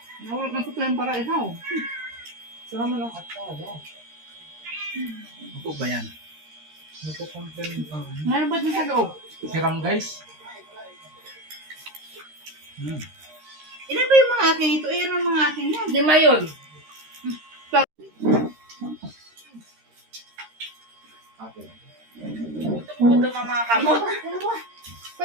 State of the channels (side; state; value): left; late; 13 ms